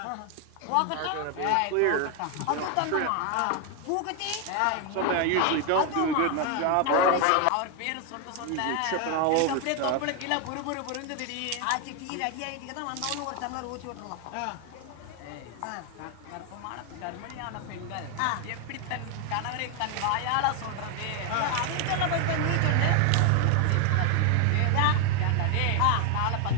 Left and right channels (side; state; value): both; different; correlation 0.01